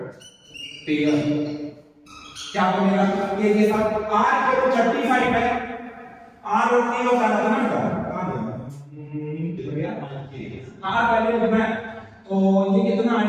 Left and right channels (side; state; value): both; identical; correlation 1.00